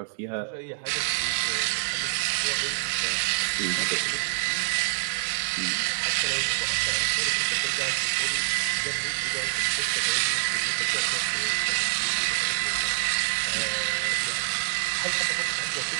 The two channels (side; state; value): left; silent; digital silence